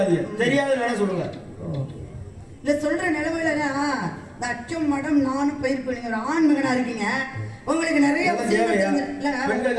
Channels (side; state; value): both; identical; correlation 1.00